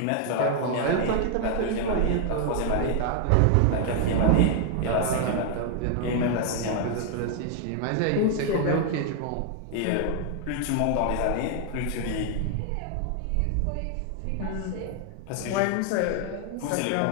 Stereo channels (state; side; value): different; both; correlation 0.00